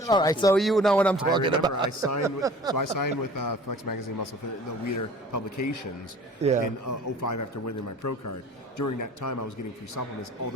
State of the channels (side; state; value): both; normal; correlation 0.46